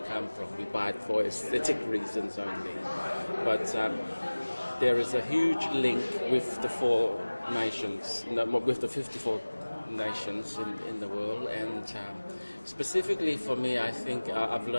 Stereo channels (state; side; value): inverted; both; correlation -1.00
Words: from. We buy it for aesthetic reasons only. But there is a huge link with the four nations, with the 54 nations in the world, and specifically for me, I think I've